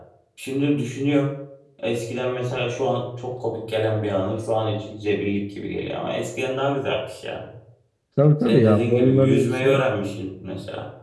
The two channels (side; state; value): both; identical; correlation 1.00